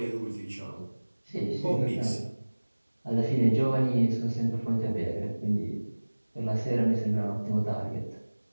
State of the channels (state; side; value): inverted; both; correlation -1.00